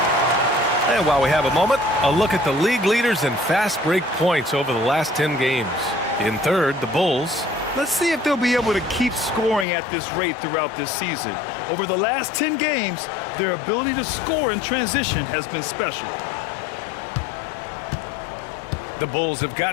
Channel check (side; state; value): right; drops out; at 9.7 s